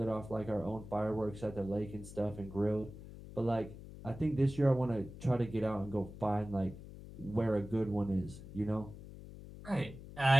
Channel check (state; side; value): noise; left; hum, 14 dB below the sound